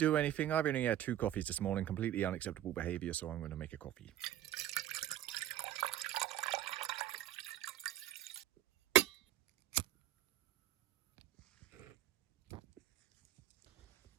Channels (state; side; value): quieter; left; 12.3 dB